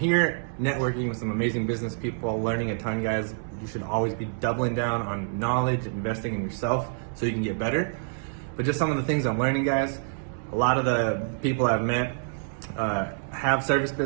networking with some amazing business people, learning a ton, guys. You should always be doubling down on knowledge, investing in yourself so you can get better. But just some of the things I'm learning, guys. A lot of the people I've met have service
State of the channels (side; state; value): left; silent; digital silence